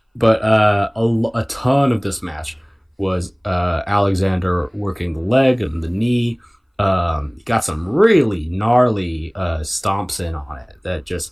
a ton of this match was Alexander working the leg and the knee. He got some really gnarly stomps in on it that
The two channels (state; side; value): identical; both; correlation 1.00